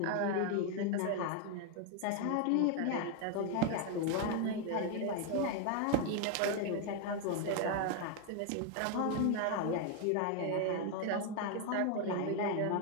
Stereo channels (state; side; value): different; both; correlation 0.01